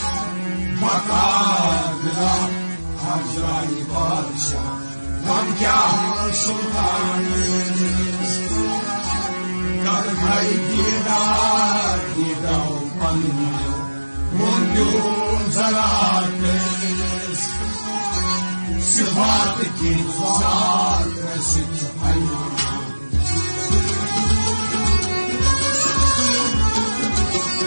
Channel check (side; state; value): both; inverted; correlation -1.00